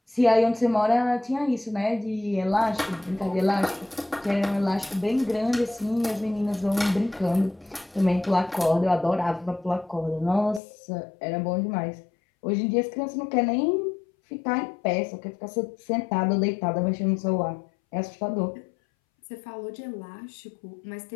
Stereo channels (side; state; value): right; drops out; at 10.6 s